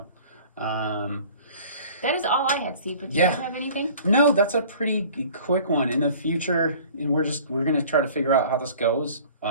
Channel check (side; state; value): both; inverted; correlation -0.47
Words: that is all I had, Steve. But do you have anything? No, that's a pretty quick one. In the future, and we're gonna try to figure out how this goes.